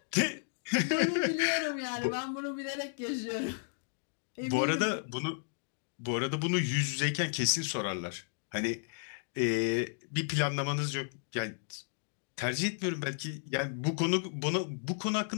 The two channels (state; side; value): silent; right; digital silence